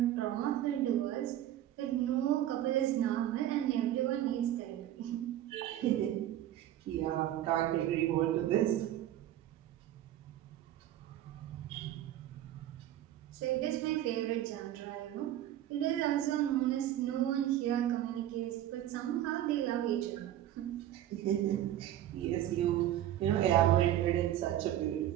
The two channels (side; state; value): left; quieter; 12.5 dB